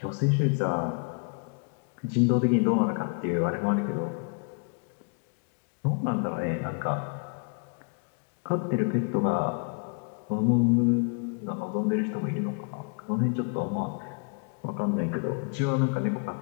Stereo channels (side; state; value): right; quieter; 37.7 dB